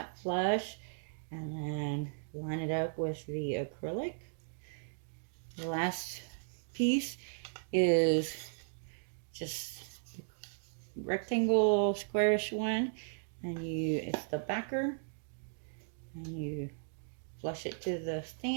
flush and then line it up with the acrylic. The last piece is just rectangle squarish one, and it's the backer, and you flush it to the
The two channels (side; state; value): left; silent; digital silence